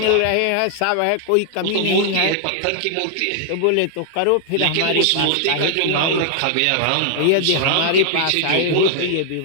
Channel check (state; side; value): different; both; correlation -0.01